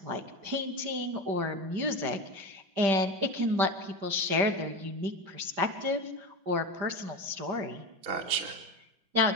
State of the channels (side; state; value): left; late; 5.1 ms